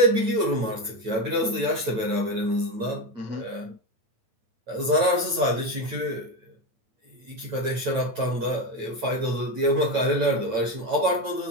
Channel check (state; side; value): late; left; 9.0 ms